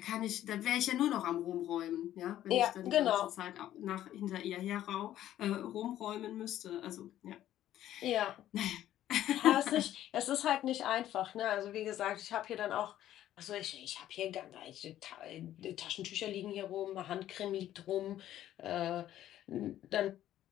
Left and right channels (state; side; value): quieter; right; 12.6 dB